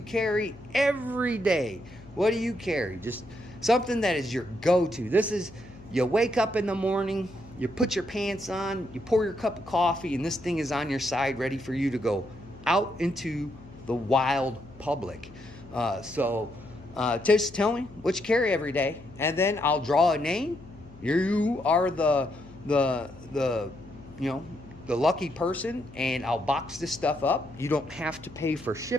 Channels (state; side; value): noise; left; hum, 21 dB below the sound